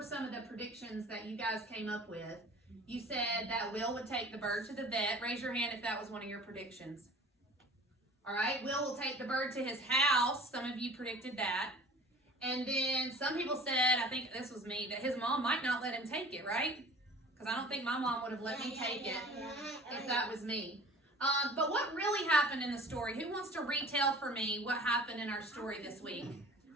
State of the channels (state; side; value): normal; both; correlation 0.44